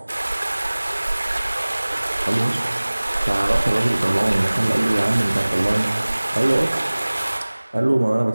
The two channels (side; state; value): both; inverted; correlation -1.00